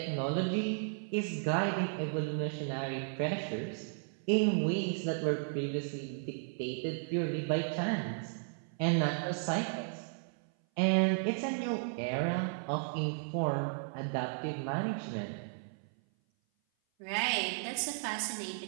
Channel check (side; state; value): left; silent; 55 dB below the other